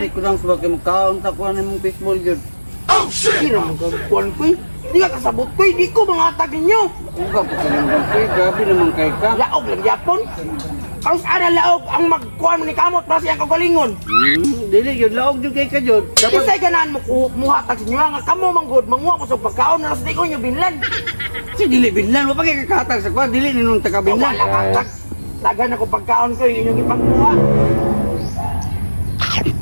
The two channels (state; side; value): inverted; both; correlation -1.00